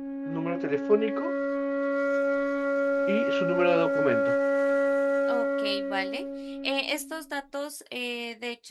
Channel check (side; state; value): both; identical; correlation 1.00